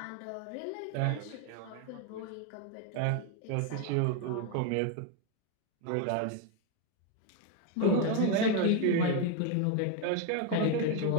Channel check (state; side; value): different; both; correlation 0.01